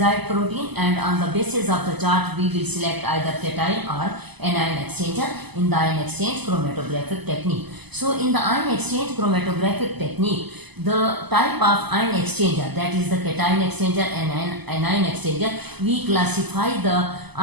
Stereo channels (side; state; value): left; late; 0.99 ms